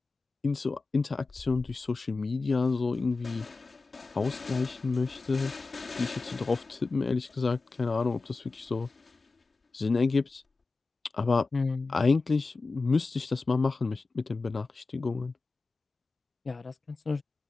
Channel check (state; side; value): quieter; right; 3.8 dB